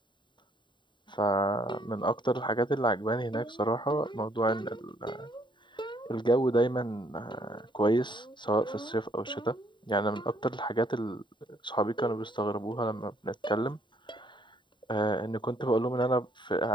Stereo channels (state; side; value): late; right; 0.23 ms